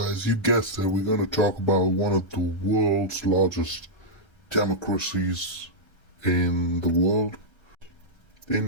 you guessed it. We're going to talk about one of the world's largest democracies in the world,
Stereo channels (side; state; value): right; late; 1.3 ms